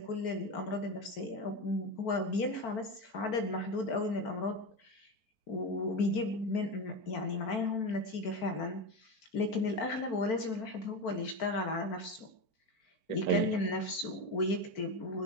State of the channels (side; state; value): right; late; 4.5 ms